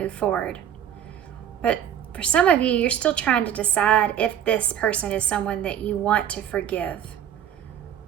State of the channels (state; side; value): quieter; left; 9.8 dB